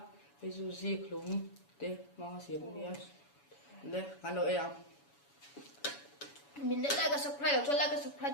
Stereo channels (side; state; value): right; late; 7.1 ms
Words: hei chu zi khlum te ma siam ania le kan lo em mình đã like cái subscribe cho like cái subscribe